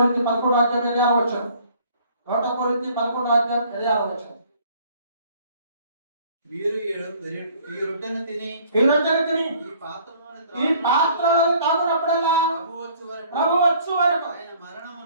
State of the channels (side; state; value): both; inverted; correlation -0.57